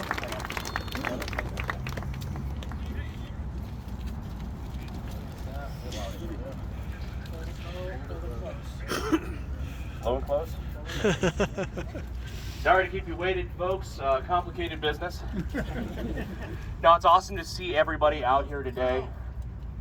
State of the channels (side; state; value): both; identical; correlation 1.00